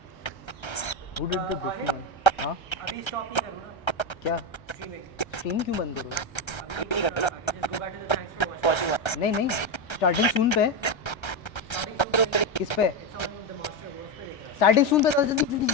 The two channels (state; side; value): late; right; 1.3 ms